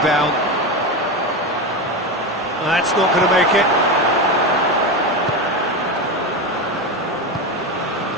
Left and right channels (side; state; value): both; normal; correlation 0.18